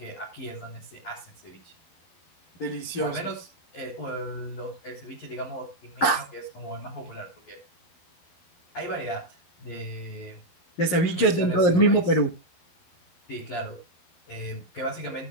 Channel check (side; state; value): right; late; 11 ms